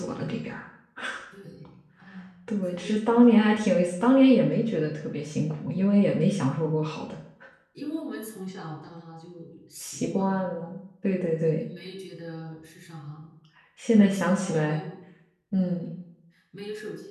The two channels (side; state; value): both; identical; correlation 1.00